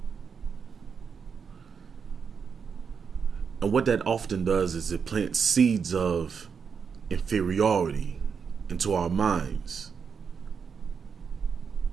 And what that often does is it plants seeds of inferiority into our minds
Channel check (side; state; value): left; quieter; 6.2 dB